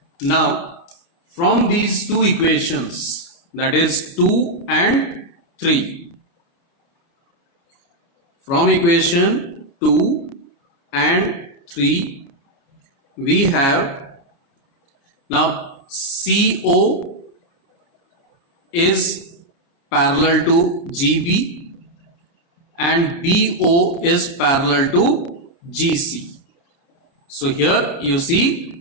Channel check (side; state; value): right; late; 29 ms